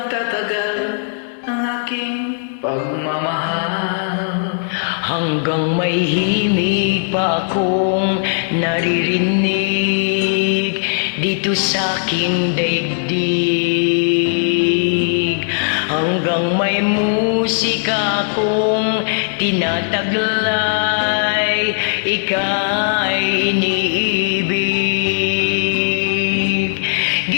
ang aking pagmamahal. Hanggang may himig pa akong naririnig dito sa aking daigdig. Hanggang may musika akong tinataglay, ika'y iniibig.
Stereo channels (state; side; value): silent; right; digital silence